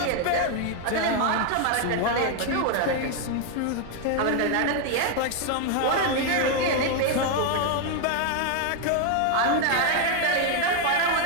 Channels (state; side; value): different; both; correlation 0.00